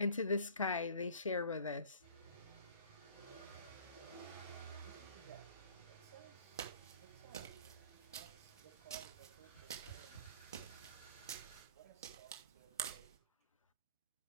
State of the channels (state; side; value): inverted; both; correlation -0.47